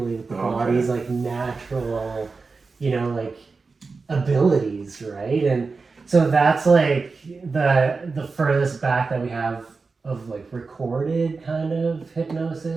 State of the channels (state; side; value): quieter; left; 4.3 dB